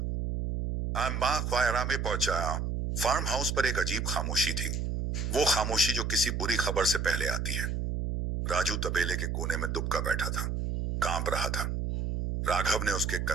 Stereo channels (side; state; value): right; noise; hum, 1 dB below the sound